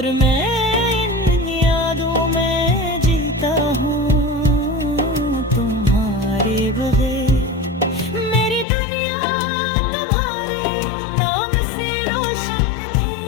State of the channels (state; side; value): drops out; right; at 8.7 s